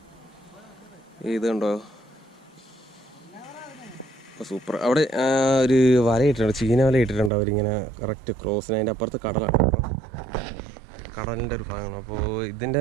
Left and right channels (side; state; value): left; drops out; at 7.3 s